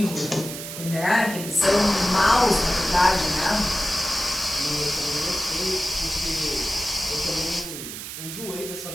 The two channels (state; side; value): noise; right; hiss, 9 dB below the sound